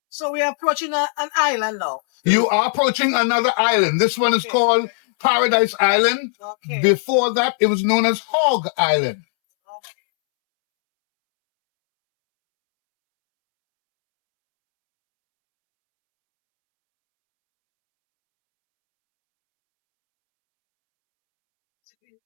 So we are approaching an island now. You are approaching another island. This one is called Paradise Island. Okay. Before that, it was known as Hog Island.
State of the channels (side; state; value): right; silent; 67 dB below the other